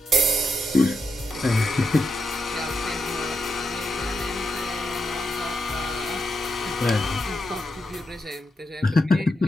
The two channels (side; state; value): both; normal; correlation 0.84